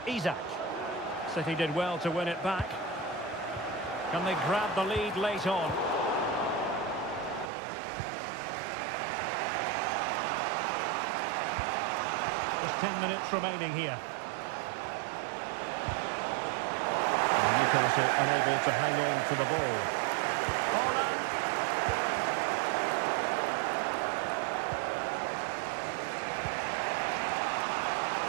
Isaac. City did well to win it back. Can they grab the lead late on? Just 10 minutes remaining here. And Newcastle unable to hang on to the ball. Holland.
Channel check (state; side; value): drops out; left; at 7.5 s